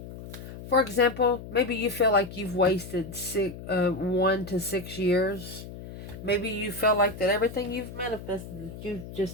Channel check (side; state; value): left; noise; hum, 12 dB below the sound